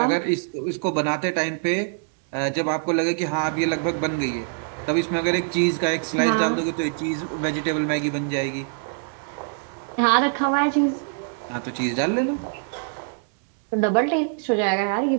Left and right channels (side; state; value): left; silent; digital silence